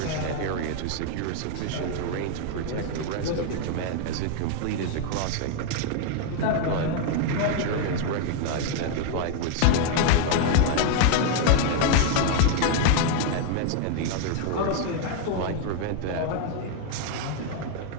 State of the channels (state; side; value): different; both; correlation 0.00